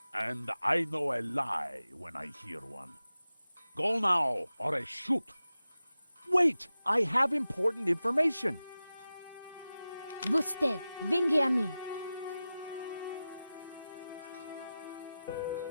And I know a lie when I hear one. Go now, or I shoot. Wait! I have important information. Vostè, vinghi a mí.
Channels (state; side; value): inverted; both; correlation -0.94